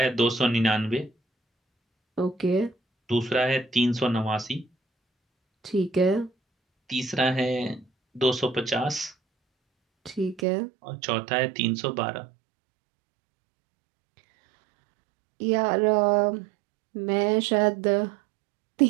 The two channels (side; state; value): left; drops out; at 10.5 s